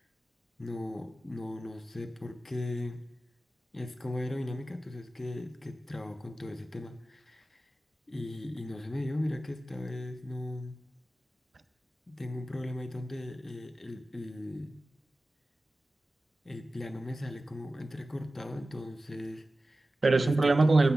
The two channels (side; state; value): both; normal; correlation 0.95